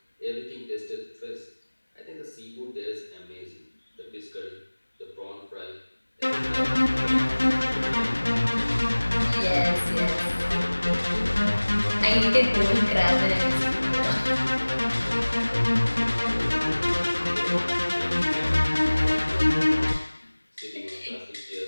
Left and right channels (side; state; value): both; inverted; correlation -1.00